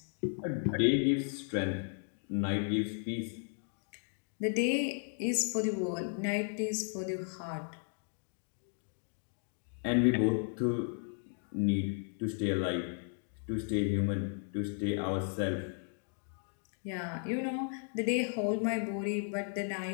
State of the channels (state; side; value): silent; right; 54 dB below the other